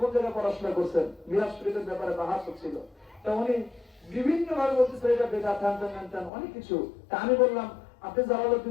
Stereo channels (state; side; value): drops out; right; at 6.3 s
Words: জায়গায় পড়াশোনা করছেন, মিলাদ শরীফের ব্যাপারে বাহাস হচ্ছিল, তা উনি বিভিন্ন ভাবে বলতেছে এটা বেদাত, অনেক কিছু। তা আমি বললাম আপনি